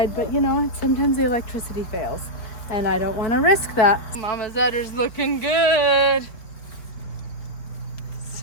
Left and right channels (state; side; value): late; right; 4.4 ms